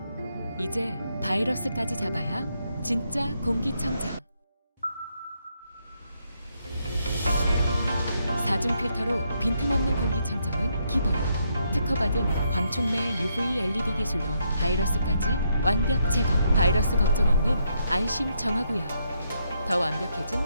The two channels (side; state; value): both; inverted; correlation -0.77